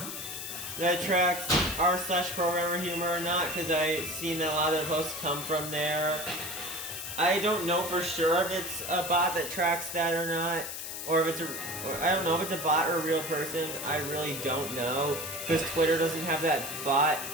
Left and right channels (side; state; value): left; noise; hiss, 7 dB below the sound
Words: r/Programmer Humor or not, because I've seen that a lot of the posts come from there. I don't know for sure if it's a bot that tracks that or not, or if it's I don't know if it's a bot or a real person. I really don't know, because Twitter doesn't have that bot